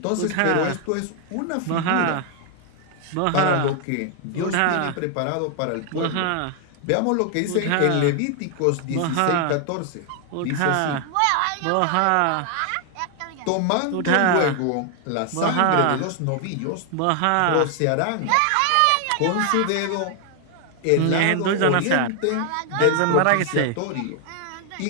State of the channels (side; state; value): both; different; correlation 0.00